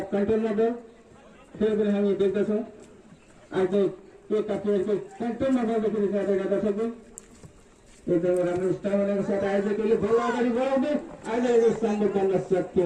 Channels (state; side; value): identical; both; correlation 1.00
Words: कन्ट्रोलमा दल फेरि पनि हामी देख्दछौँ आयोजक एकका प्लेयरको कन्ट्रोलमा बल देखिरहेका दर्शकबिन एकदमै राम्रो स्टामिनाको साथ आयोजकले बल अगाडि बढाउँदै आयोजकले सामने गर्न सक्यो